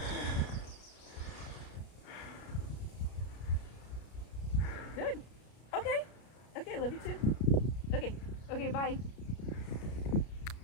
Good. Okay. Okay, love you too. Okay. Okay, bye.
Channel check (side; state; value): right; late; 33 ms